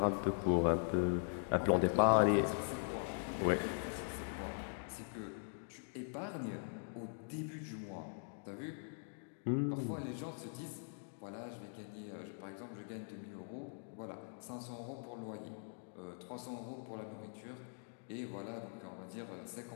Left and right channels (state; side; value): silent; right; digital silence